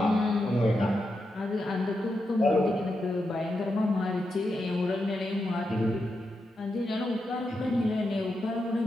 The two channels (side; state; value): both; normal; correlation 0.86